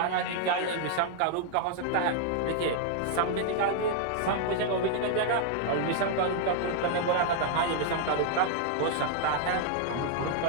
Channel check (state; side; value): different; both; correlation 0.00